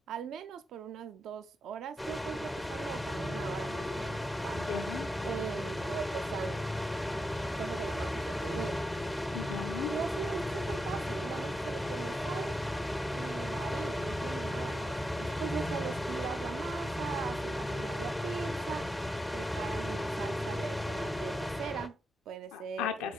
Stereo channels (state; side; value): normal; both; correlation 0.86